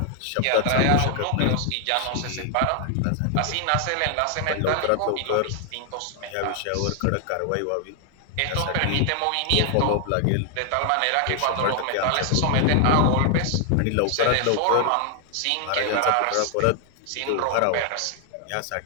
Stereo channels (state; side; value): different; both; correlation 0.00